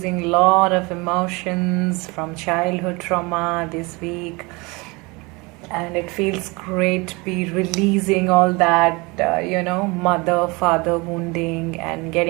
a lot of emotions from childhood trauma this week, and it feels great to be releasing all that, mother father wounding and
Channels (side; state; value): left; quieter; 26.1 dB